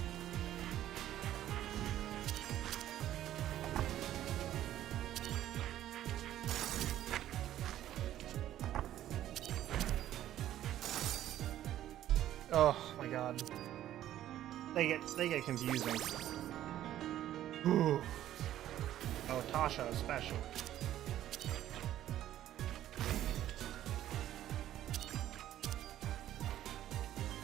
Oh my god. They get confusing. Ooh. Oh, Tasha especially.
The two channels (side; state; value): left; quieter; 12.6 dB